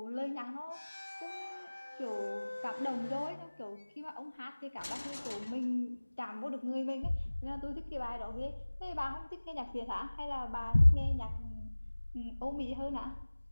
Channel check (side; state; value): both; inverted; correlation -1.00